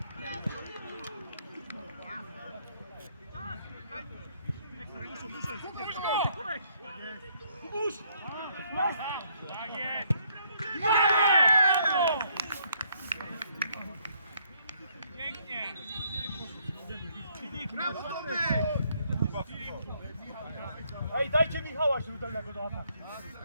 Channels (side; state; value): both; inverted; correlation -0.69